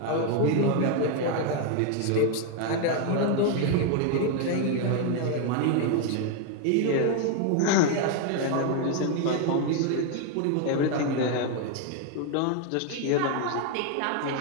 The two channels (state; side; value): different; both; correlation 0.01